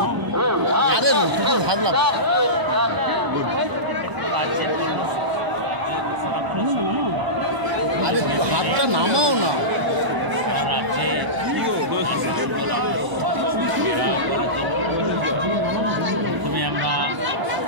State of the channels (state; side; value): late; left; 1.0 ms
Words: হাতটা নামাও না। সারা রাজ্যে প্রথমে আমরা